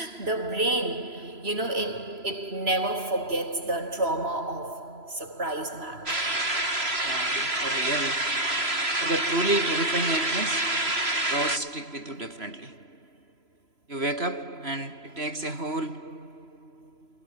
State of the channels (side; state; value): left; late; 3.0 ms